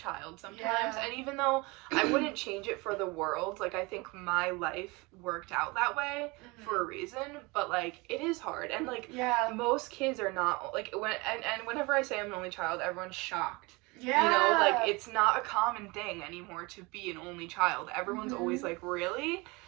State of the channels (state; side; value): quieter; left; 25.5 dB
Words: sometimes, and even though I wouldn't change it for the world, like, I think my life worked out that way for a reason, but, like, it is hard, and, like, most kids are not, like, whenever I say I'm an only child, everyone's shocked. Yeah. You know, like, it's not a common thing anymore to be an only child. Everyone's always like, really?